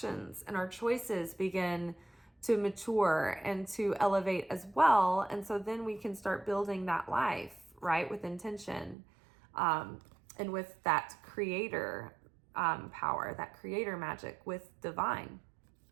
and our choices begin to mature and to elevate as well. And so then we can start building that life, right, with intention. And with that creator power, that creator magic with divine.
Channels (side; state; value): left; drops out; at 9.0 s